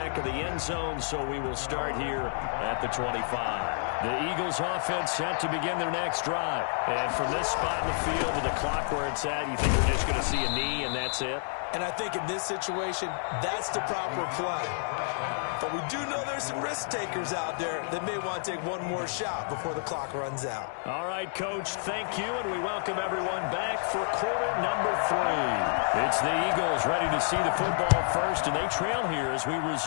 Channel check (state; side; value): silent; right; digital silence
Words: of the end zone, so we will start here at the 25. The Eagles offense set to begin their next drive. And from this spot in the field with the clock where it's at, you think we're just going to see a knee and that's it? And I think in this situation, that's the proper play. But we do know there's some risk takers out there that may want to take one more shot before the clock runs out. All right, Coach, thank you, and we welcome everyone back for quarter number 3. It's the Eagles ready to see the football first, and they trail here as we